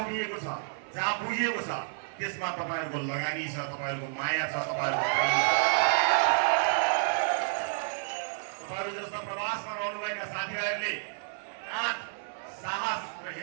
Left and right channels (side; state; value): left; silent; 55 dB below the other